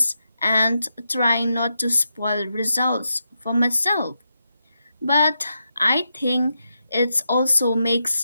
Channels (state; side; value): inverted; both; correlation -0.85